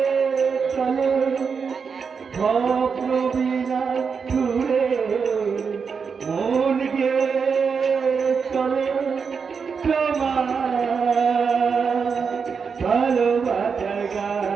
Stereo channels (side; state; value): left; quieter; 5.8 dB